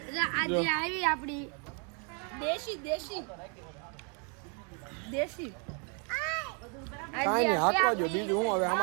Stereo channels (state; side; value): quieter; left; 37.5 dB